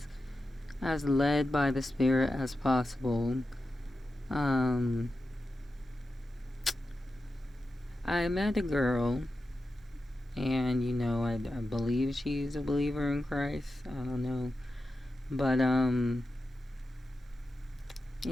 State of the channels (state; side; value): normal; both; correlation 0.91